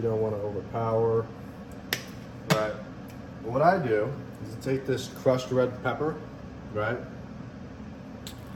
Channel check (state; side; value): identical; both; correlation 1.00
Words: don't want to overpower. Right. What I do is I take this crushed red pepper, right?